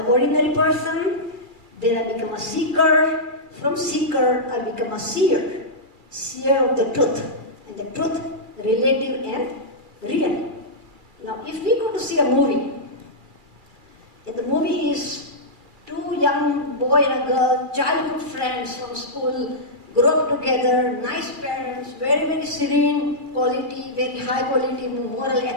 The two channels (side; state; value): left; late; 2.3 ms